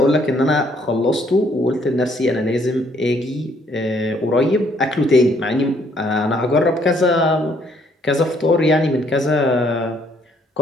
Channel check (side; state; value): both; normal; correlation 0.66